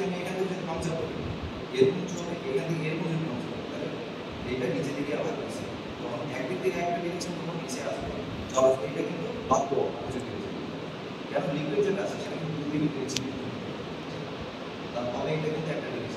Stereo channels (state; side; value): identical; both; correlation 1.00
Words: আমি এখান থেকে যদি পাংচার করি এরকম উঁচু হবে এখান থেকে এরকম যদি পাংচার করি তাহলে এটা নিচে দিকে আবার